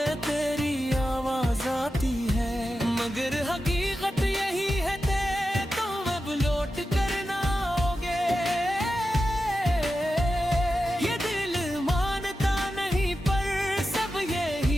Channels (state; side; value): normal; both; correlation 0.91